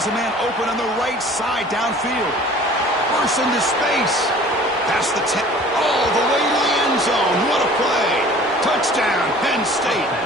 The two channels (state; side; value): normal; both; correlation 0.47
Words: a man open on the right side downfield. Bursts into space. Past the 10. All the way to the end zone. What a play. Touchdown, Penn State.